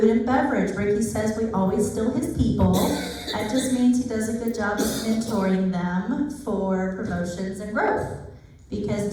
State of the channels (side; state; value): both; identical; correlation 1.00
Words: and beverage. Ricky says we always steal his people. That just means he does a good job of mentoring them for promotions and growth. Because